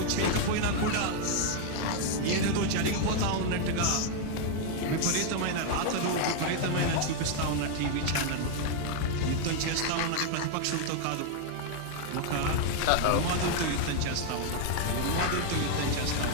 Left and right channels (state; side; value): different; both; correlation 0.00